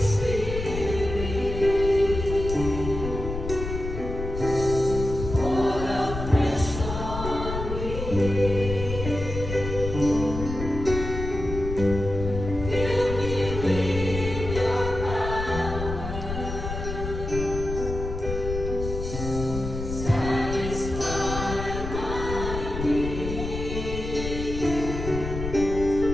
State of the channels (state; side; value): noise; left; rumble, 6 dB below the sound